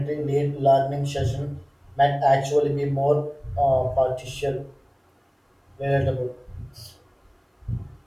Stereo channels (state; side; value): identical; both; correlation 1.00